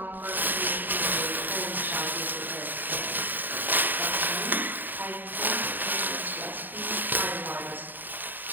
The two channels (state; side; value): late; left; 0.090 ms